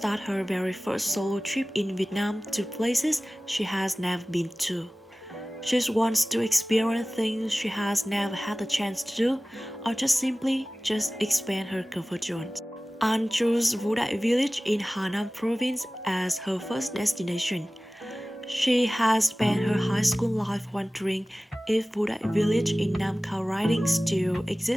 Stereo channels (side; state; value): both; normal; correlation 0.97